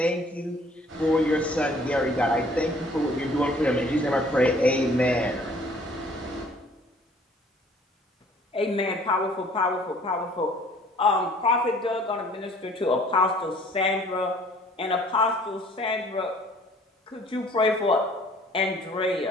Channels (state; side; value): normal; both; correlation 0.55